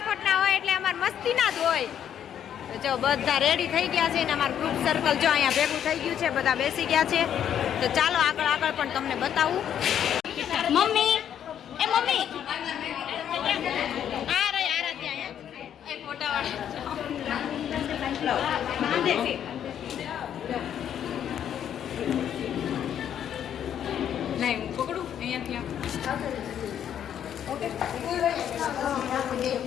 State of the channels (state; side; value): quieter; right; 9.6 dB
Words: હોય એટલે અમારે મસ્તીના જ હોય. જો બધા રેડી થઈ ગયા છે ને અમારું ગ્રુપ સર્કલ જો અહીંયા ભેગું થઈ ગયું છે. બધા બેસી ગયા છે. તો ચાલો આગળ પણ તમને બતાવું. મમ્મી એ મમ્મી આ રહી આરાધ્યા અહીંયા એ ફોટાવાળા નહીં હું પકડું અહીંયાથી ઓકે.